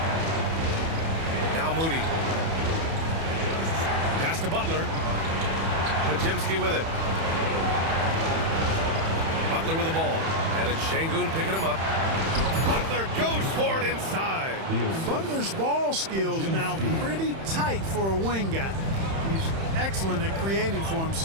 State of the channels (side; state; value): left; late; 31 ms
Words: Now Moody. Pass to Butler. Pajemski with it. Butler with the ball. And it's Şengün picking him up. Butler goes for it inside. Butler's ball skills now pretty tight for a wing guy. He's excellent at creating for